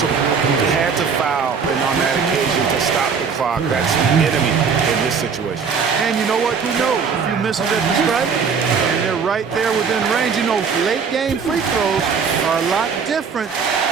They had to foul, and on that occasion to stop the clock. That's enemy in this situation. And you know what? Who knows? If you miss it at the stripe, and they're right there within range. You know, late game free throws are a lot different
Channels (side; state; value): left; quieter; 5.9 dB